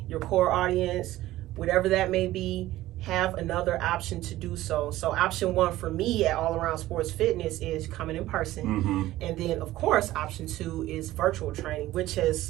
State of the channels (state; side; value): quieter; left; 15.8 dB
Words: your core audience, whatever that may be. Have another option to do so. So option one for me at All Around Sports Fitness is coming in person. And then, of course, option two is virtual training, which